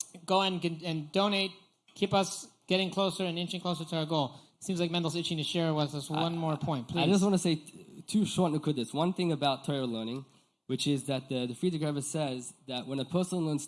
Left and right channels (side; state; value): both; identical; correlation 1.00